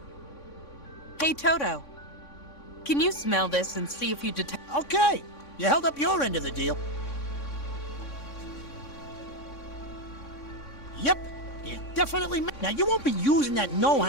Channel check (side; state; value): right; late; 3.6 ms